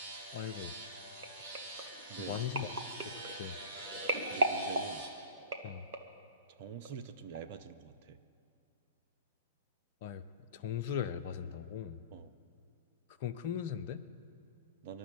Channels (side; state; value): both; inverted; correlation -0.39